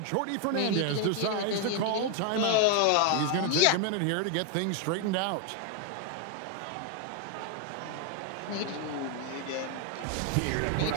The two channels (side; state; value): both; different; correlation 0.01